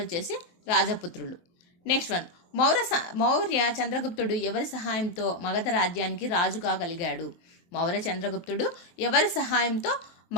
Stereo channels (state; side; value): late; right; 23 ms